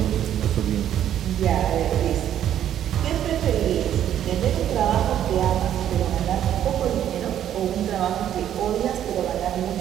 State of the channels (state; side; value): quieter; left; 10.7 dB